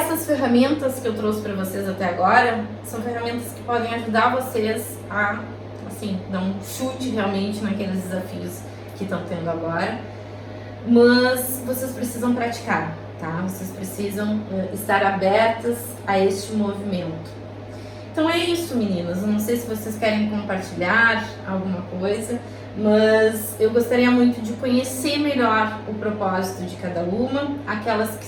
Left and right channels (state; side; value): identical; both; correlation 1.00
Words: ferramentas que eu trouxe para vocês até agora são ferramentas que podem ajudar vocês a, assim, dar um chute realmente naqueles desafios que estão tendo agora. Mas vocês precisam praticar, tá? Vocês precisam estar abertas a este movimento. Então é isso, meninas. Eu não sei se vocês querem compartilhar alguma coisa, mas eu gostaria muito de conhecer melhor o propósito de cada uma, aquelas que